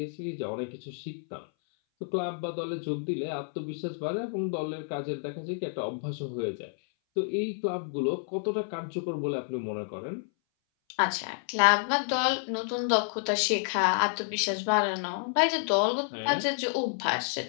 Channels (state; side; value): silent; right; 58 dB below the other